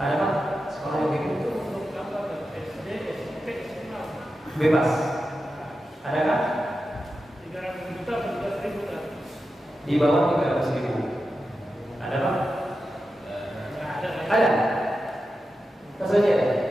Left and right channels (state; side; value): normal; both; correlation 0.91